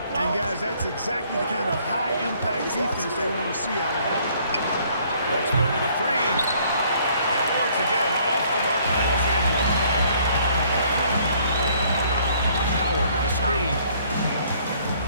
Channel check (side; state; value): both; inverted; correlation -0.62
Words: And guys, that's exactly the kind of high-impact defense they want to see out of him. Let's go with a 3. And once again, off the mark by Los Angeles. Howard, the screen.